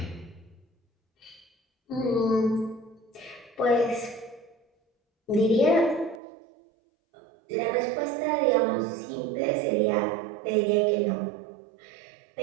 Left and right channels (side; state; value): left; drops out; at 6.2 s